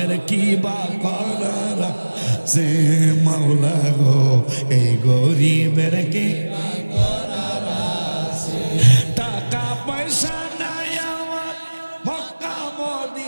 কি বা করার সে মাওলা গো এই গরিবের কি বা করার আছে টাকা পয়সা নাই আমার মক্কা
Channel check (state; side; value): inverted; both; correlation -1.00